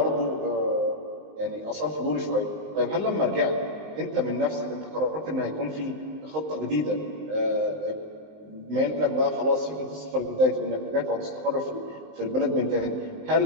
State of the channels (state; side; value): late; left; 19 ms